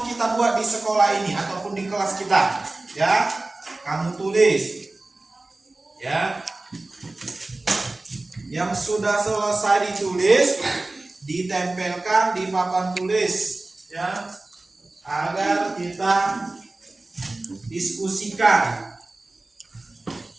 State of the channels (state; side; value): quieter; left; 3.0 dB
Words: buat di sekolah ini ataupun di kelas kita? Ya, kamu tulis. Ya. Yang sudah selesai ditulis, ditempelkan di papan tulis, ya. Agar kita diskusikan.